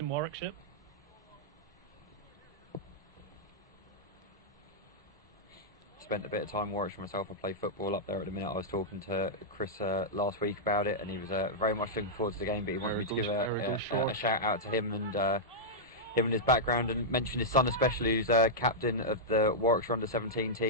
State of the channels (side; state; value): both; normal; correlation -0.09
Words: Warwickshire. Spent a bit of time in Warwickshire myself. I play football up there at the minute. I was talking to Chris last week about it, and he was very much looking forward to the game, but he wanted me to give a shout out to him and his background, and mention his son especially, who's captain of the Warwickshire under-17